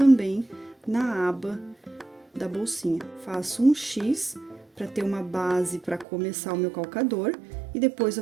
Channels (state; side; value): drops out; left; at 6.1 s